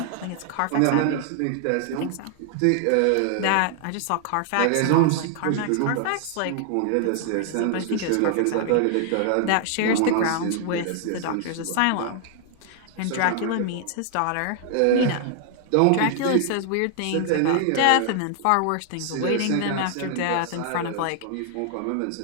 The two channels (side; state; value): both; different; correlation 0.00